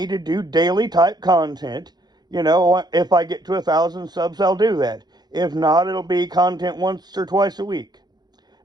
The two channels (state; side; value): late; left; 0.20 ms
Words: to do daily type content, you know, if I get to 1,000 subs, I'll do that. If not, it'll be content once or twice a week.